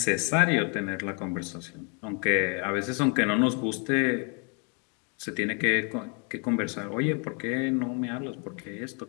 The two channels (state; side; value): quieter; right; 36.8 dB